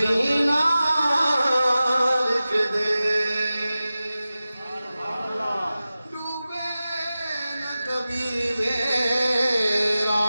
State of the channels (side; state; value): both; inverted; correlation -0.95